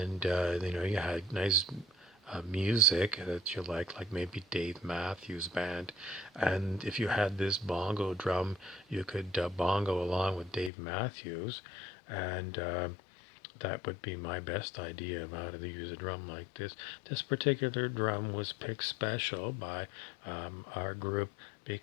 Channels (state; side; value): drops out; right; at 10.7 s